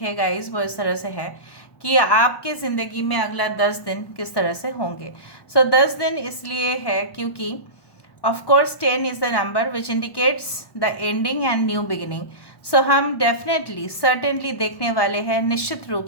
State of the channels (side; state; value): right; late; 1.1 ms